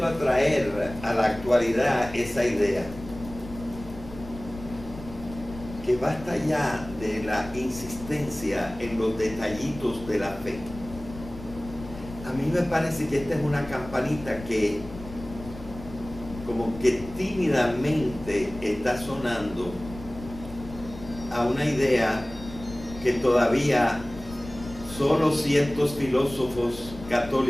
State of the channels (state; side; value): noise; left; rumble, 14 dB below the sound